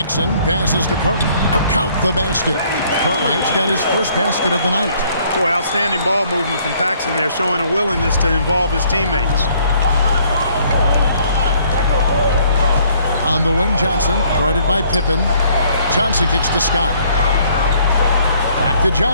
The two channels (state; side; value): inverted; both; correlation -0.62